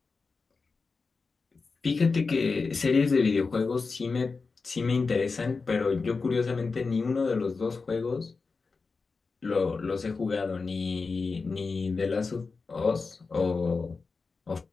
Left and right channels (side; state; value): right; quieter; 4.4 dB